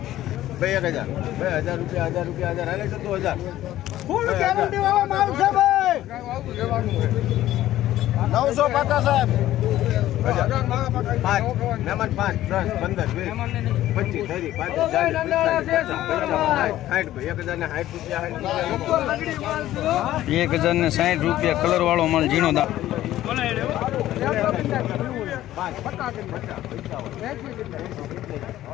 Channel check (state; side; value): quieter; right; 14.0 dB